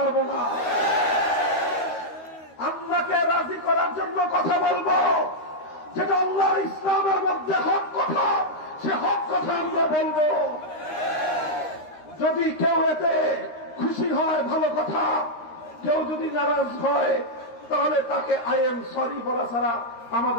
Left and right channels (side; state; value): right; late; 13 ms